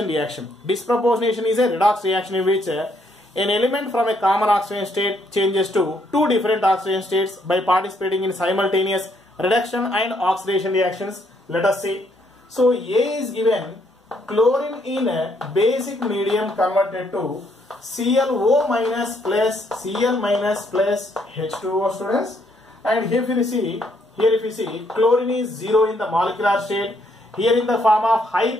reaction. Disproportionation is a redox reaction in which an element from a common oxidation state changes to two different oxidation states by participating in simultaneous reduction and oxidation reactions. Let us see. So A is given chlorine in a basic medium converted to ClO minus plus Cl minus plus H2O, students. And here if you see chlorine is 0 in the molecular state. Here in the form of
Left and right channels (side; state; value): both; normal; correlation 0.71